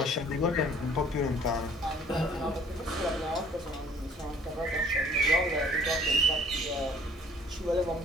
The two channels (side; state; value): both; normal; correlation 0.54